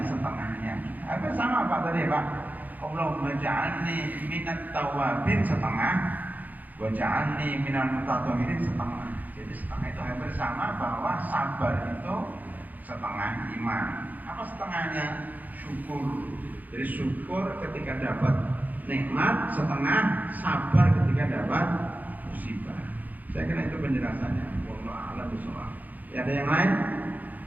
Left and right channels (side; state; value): left; late; 0.082 ms